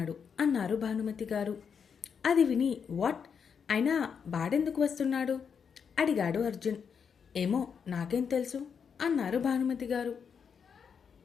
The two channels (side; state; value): right; quieter; 6.7 dB